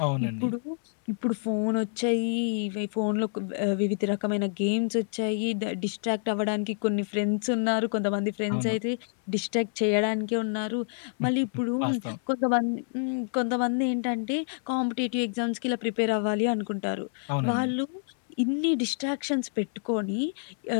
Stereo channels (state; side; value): silent; right; 59 dB below the other